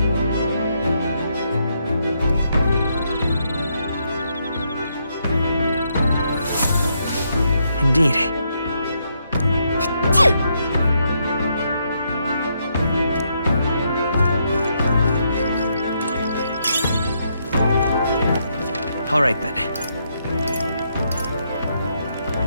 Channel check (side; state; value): both; inverted; correlation -0.77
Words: Indeed. All right, then.